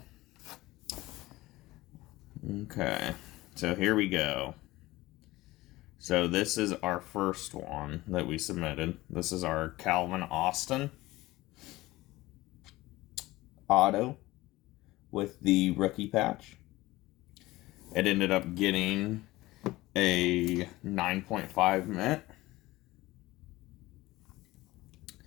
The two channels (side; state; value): right; quieter; 18.7 dB